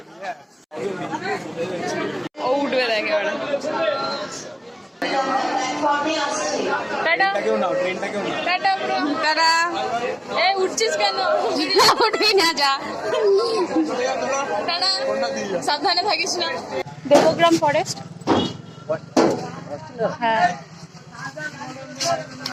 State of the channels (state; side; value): identical; both; correlation 1.00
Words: ও উঠবে দেখে ওরা। উঠছিস কেন? উঠবি না, যা সাবধানে থাকিস না। দেবগ্রাম ফরেস্ট। হ্যাঁ